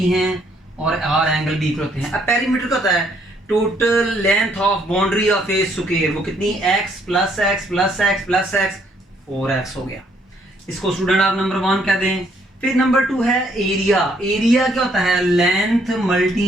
हैं और आर एंगल भी इक्वल होते हैं। अब पेरीमीटर का होता है total length of boundary of a square, वो कितनी? x plus x plus x plus x, 4x हो गया। इसको स्टूडेंट आप नंबर 1 कह दें। फिर नंबर 2 है एरिया। एरिया क्या होता है? Length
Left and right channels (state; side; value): normal; both; correlation 0.68